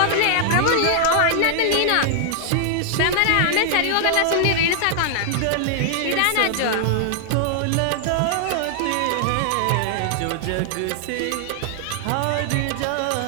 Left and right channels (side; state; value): both; different; correlation 0.00